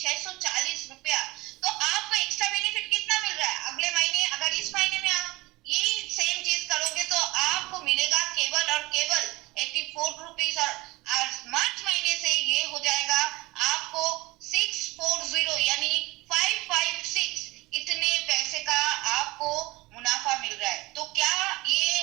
रुपया। तो आपको एक्स्ट्रा बेनिफिट कितना मिल रहा है? अगले महीने अगर इस महीने में आप यही सेम चीज करोगे तो आपको मिलेगा केवल और केवल 84 रुपीज, और मार्च महीने से ये हो जाएगा आपको 640 यानी 556 इतने पैसे का आपको मुनाफा मिल रहा है। तो क्या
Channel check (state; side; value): quieter; left; 21.5 dB